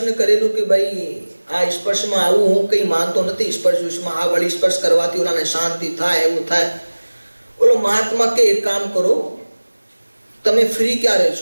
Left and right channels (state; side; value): inverted; both; correlation -1.00